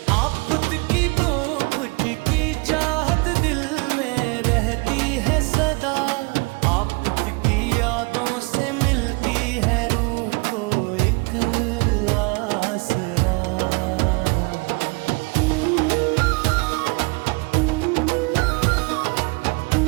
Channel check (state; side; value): quieter; left; 29.2 dB